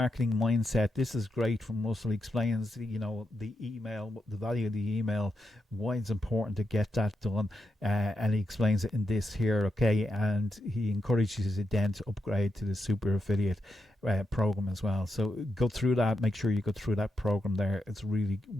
mindset. This is great from Russell. He explains, the email, the value of the email, why it's important to get that done, and he explains it in this here. Okay, and he encourages you then to upgrade to the super affiliate program as well. So go through that. Make sure you go through that program there. It's really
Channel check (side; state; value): both; normal; correlation 0.84